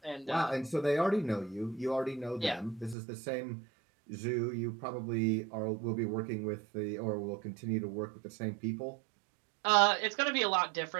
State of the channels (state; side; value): drops out; left; at 3.0 s